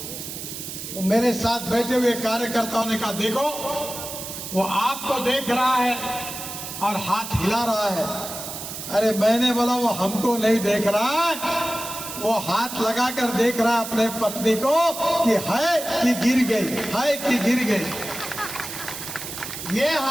तो मेरे साथ बैठे हुए कार्यकर्ताओं ने कहा, देखो वो आपको देख रहा है और हाथ हिला रहा है। अरे मैंने बोला वो हमको नहीं देख रहा है, वो हाथ लगाकर देख रहा है अपने पत्नी को कि है कि गिर गई, है कि गिर गई। ये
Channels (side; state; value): right; noise; hiss, 8 dB below the sound